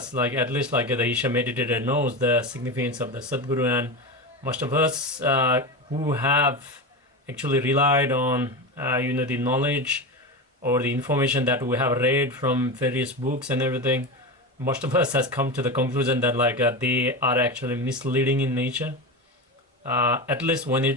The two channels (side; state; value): both; normal; correlation 0.21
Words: like at least like the Isha meditator knows the significance of the Sadhguru, and most of us who have actually relied on the knowledge or the information that we have read from various books and everything, most of us has come to the conclusion that they are actually misleading in nature, at least when